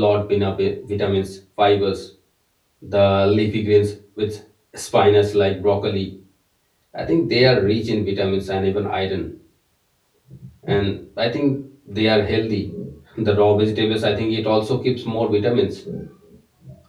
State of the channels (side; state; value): both; identical; correlation 1.00